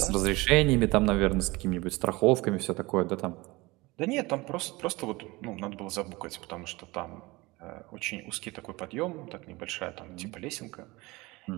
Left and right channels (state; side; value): quieter; left; 22.3 dB